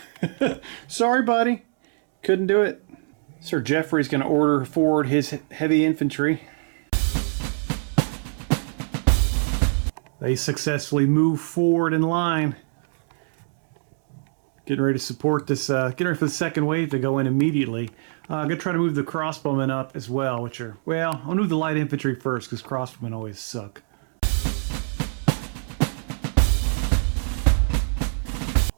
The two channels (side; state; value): left; silent; digital silence